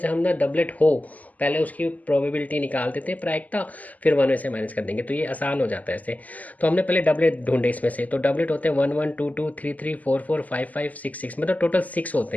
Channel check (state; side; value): late; right; 0.077 ms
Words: हम ना डबलेट हो पहले उसकी प्रोबेबिलिटी निकाल देते हैं प्रायिकता, फिर 1 में से माइनस कर देंगे, तो ये आसान हो जाता है ऐसे। तो हमने पहले डबलेट ढूंढे इसमें से, तो डबलेट होते हैं 1 1 2 2 3 3 4 4 5 5 6 6, मतलब टोटल 6 होते